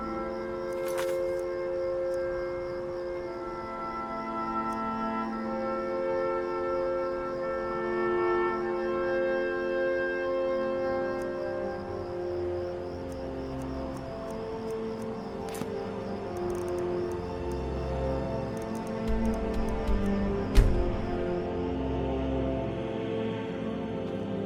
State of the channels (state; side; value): identical; both; correlation 1.00